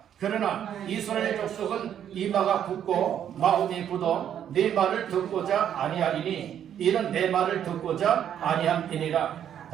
그러나 이스라엘 족속은 이마가 굳고 마음이 굳어 네 말을 듣고자 아니하리니 이는 내 말을 듣고자 아니함이니라.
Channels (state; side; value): quieter; left; 9.6 dB